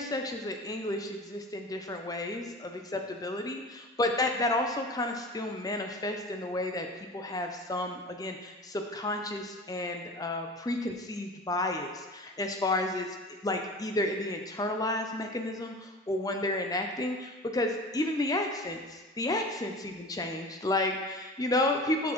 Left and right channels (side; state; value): both; normal; correlation 0.35